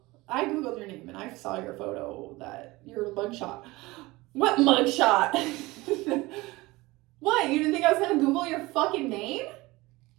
I Googled your name and I saw your photo, that your mugshot. What mugshot? What? You didn't think I was gonna Google your fucking name?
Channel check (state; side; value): quieter; left; 21.1 dB